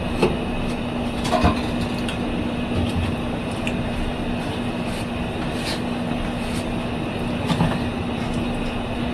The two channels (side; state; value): both; identical; correlation 1.00